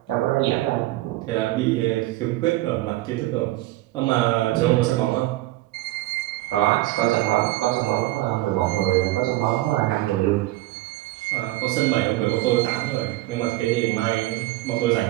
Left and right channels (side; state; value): left; quieter; 17.4 dB